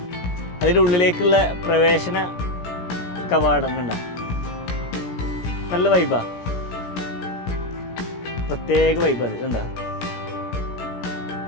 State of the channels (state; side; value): late; right; 17 ms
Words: അതിൻ്റെ ഉള്ളിലേക്കുള്ള പ്രവേശന കവാടം കണ്ട, നല്ല വൈബാ, പ്രത്യേക വൈബ്. അത് കണ്ട,